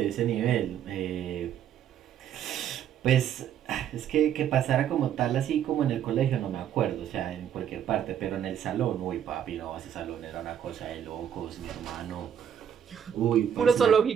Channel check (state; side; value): quieter; left; 9.2 dB